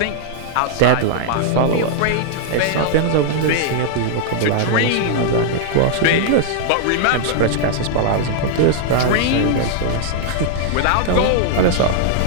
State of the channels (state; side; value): different; both; correlation -0.01